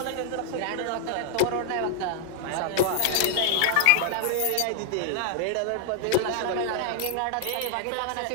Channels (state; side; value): different; both; correlation -0.01